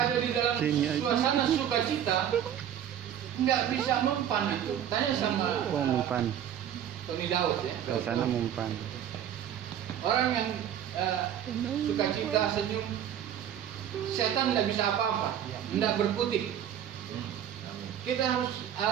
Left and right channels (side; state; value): left; quieter; 10.1 dB